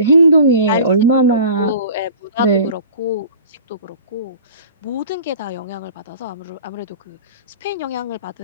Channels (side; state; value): both; inverted; correlation -0.43